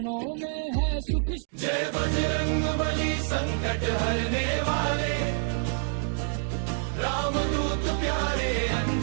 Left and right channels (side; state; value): left; silent; digital silence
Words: में है सुख। जय बजरंग बली संकट हरने वाले, रामदूत प्यारे